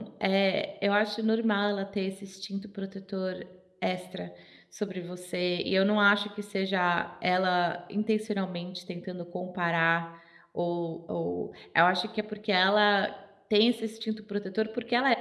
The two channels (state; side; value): identical; both; correlation 1.00